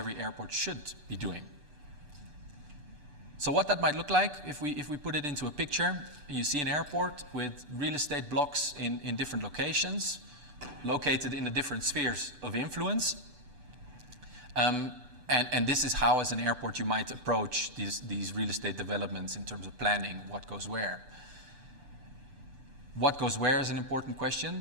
airport should be doing. So what that might look like, if we put it into a picture, you see an airport with real estate blocks in different locations, located in the different spheres of influence. And this is how, as an airport, you might approach these real estate developments in terms of planning what goes where. What goes where is an important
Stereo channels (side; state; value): left; late; 6.8 ms